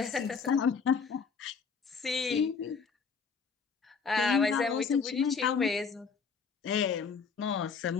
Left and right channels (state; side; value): quieter; right; 5.6 dB